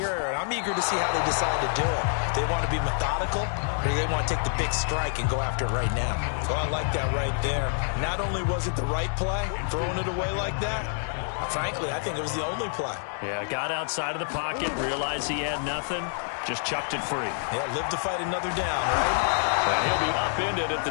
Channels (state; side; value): silent; right; digital silence